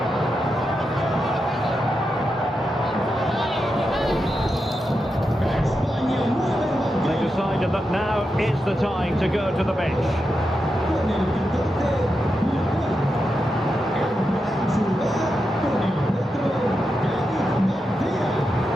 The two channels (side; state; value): both; normal; correlation 0.87